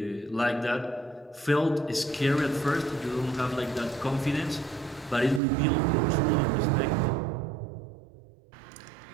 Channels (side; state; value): left; drops out; at 5.4 s